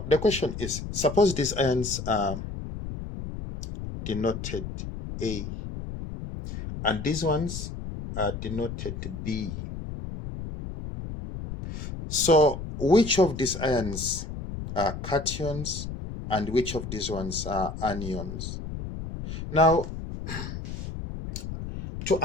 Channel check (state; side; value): noise; left; rumble, 7 dB below the sound